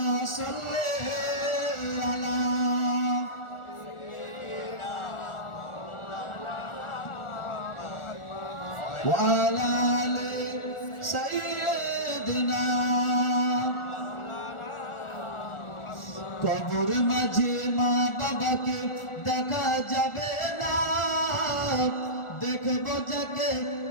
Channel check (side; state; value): right; late; 1.4 ms